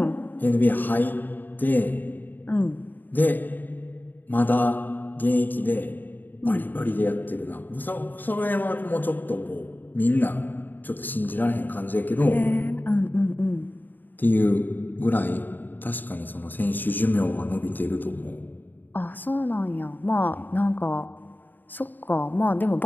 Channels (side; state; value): right; late; 0.090 ms